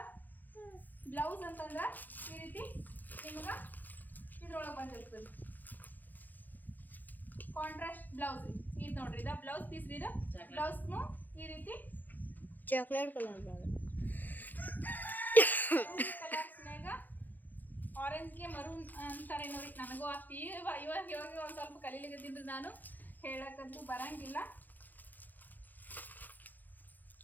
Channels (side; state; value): right; late; 0.085 ms